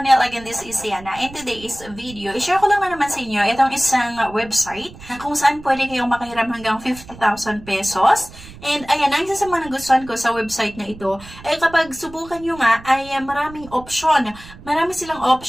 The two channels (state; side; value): noise; right; rumble, 18 dB below the sound